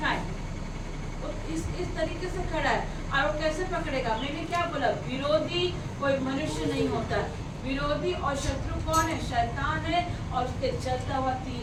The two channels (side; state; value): both; identical; correlation 1.00